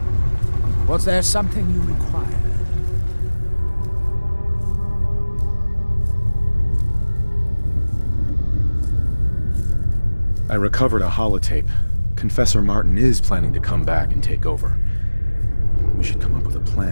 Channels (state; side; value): inverted; both; correlation -1.00